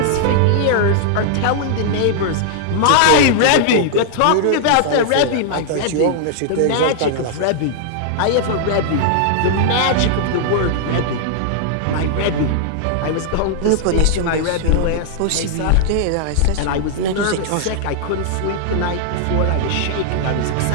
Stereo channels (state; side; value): different; both; correlation -0.01